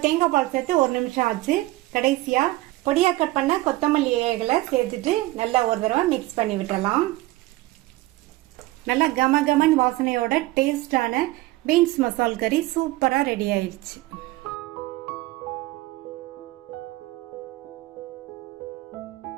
தேங்காய் பால் சேர்த்து 1 நிமிஷம் ஆச்சு. கடைசியா பொடியா கட் பண்ண கொத்தமல்லி இலைகளை சேர்த்துட்டு நல்லா ஒரு தடவை மிக்ஸ் பண்ணி விட்டுறலாம். நல்லா கமகமன் வாசனையோட டேஸ்டான பீன்ஸ் மசால் கறி சூப்பரா ரெடி ஆயிடுச்சு.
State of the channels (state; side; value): quieter; left; 18.9 dB